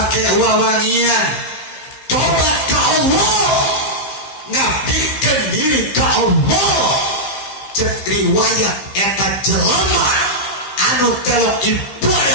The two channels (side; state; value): right; late; 15 ms